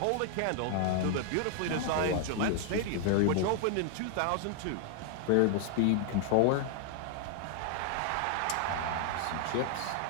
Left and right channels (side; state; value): both; different; correlation 0.00